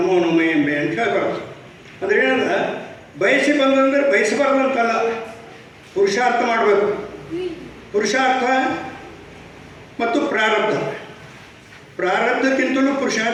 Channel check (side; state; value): both; identical; correlation 1.00